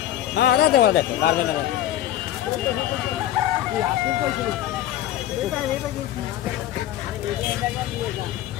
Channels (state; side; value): quieter; right; 12.7 dB